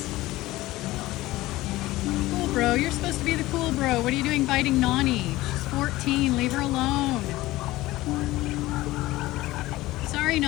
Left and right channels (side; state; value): right; quieter; 17.9 dB